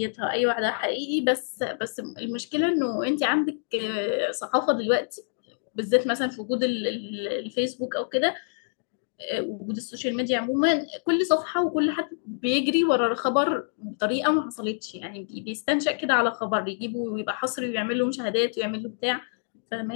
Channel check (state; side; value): silent; right; digital silence